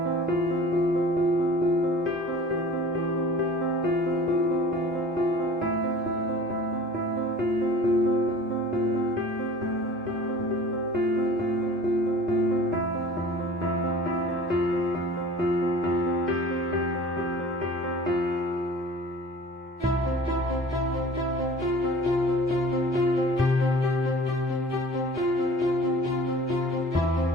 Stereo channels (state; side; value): normal; both; correlation 0.44